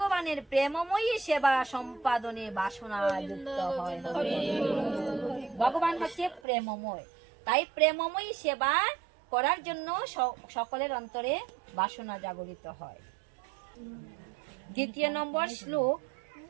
প্রেমময়ী সেবা সম্পাদনে বাসনা যুক্ত হয়। ভগবান হচ্ছে প্রেমময়, তাই প্রেমময়ী সেবা করার জন্য সকলের অন্তরে বাসনা জাগরিত হয়। দ্বিতীয় নম্বর শ্লোক,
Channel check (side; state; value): left; drops out; at 6.4 s